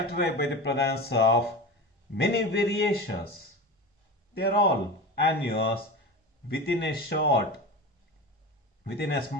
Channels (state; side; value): normal; both; correlation 0.28